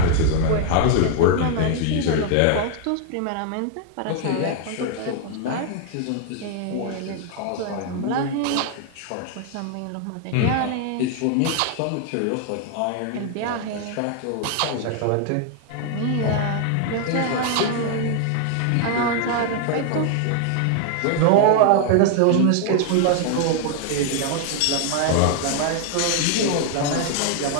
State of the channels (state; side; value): different; both; correlation 0.00